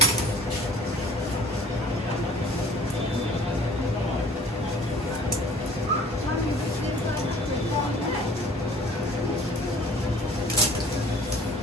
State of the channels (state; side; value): normal; both; correlation 0.50